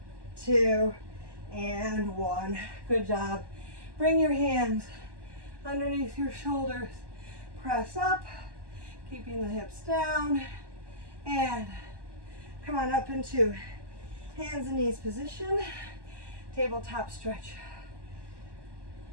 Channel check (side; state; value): left; late; 1.1 ms